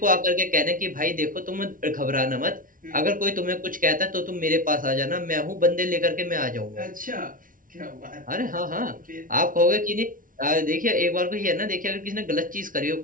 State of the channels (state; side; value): late; left; 0.39 ms